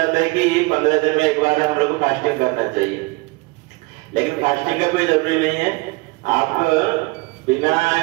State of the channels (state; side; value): quieter; left; 24.4 dB